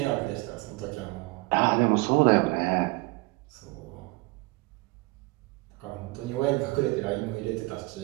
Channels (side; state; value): left; quieter; 24.3 dB